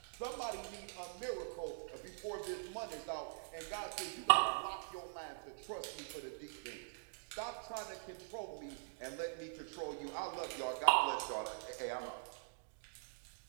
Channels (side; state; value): left; silent; digital silence